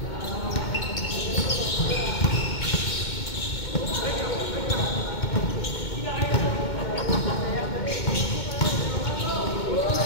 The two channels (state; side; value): late; right; 2.2 ms